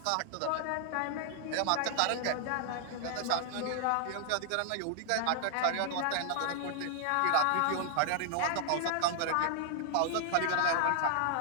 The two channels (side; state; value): both; different; correlation -0.01